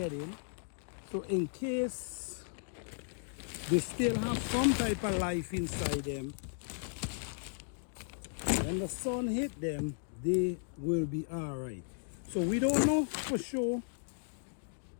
in. So in case they still have some type of life inside them, when the sun hit them, they will be all right. So we don't know for sure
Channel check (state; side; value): silent; right; digital silence